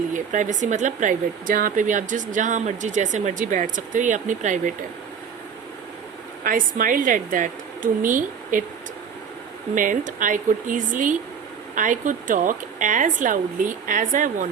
प्राइवेसी मतलब प्राइवेट, जहाँ पे भी आप जहाँ मर्जी जैसे मर्जी बैठ सकते हो, ये अपनी प्राइवेट है. I smiled at that. To me it meant I could talk as loudly as I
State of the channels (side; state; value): left; quieter; 7.0 dB